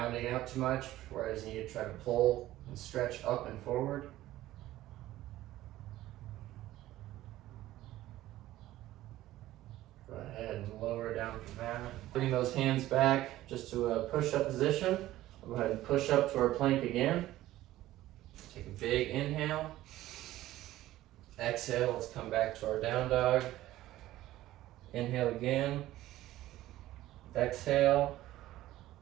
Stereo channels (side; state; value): left; quieter; 15.2 dB